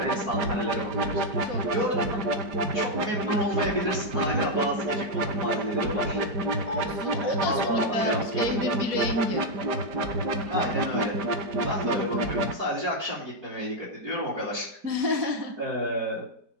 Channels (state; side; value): late; left; 5.0 ms